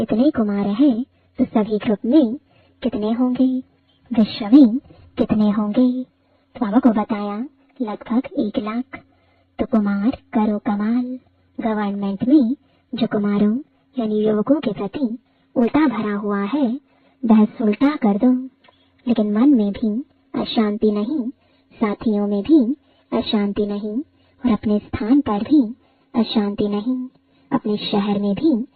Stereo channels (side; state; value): both; identical; correlation 1.00